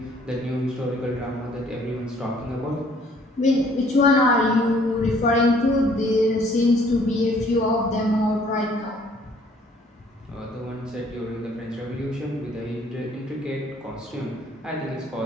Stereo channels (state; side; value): normal; both; correlation 0.60